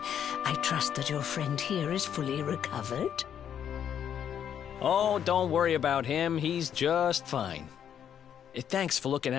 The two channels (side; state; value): right; quieter; 9.0 dB